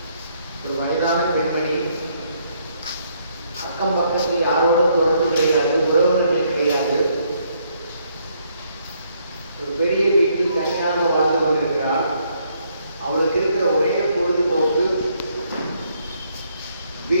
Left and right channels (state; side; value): inverted; both; correlation -0.71